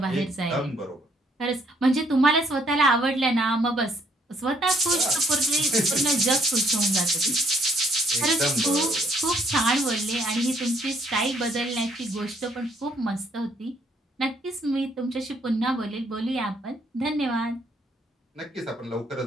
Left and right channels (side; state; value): both; normal; correlation 0.68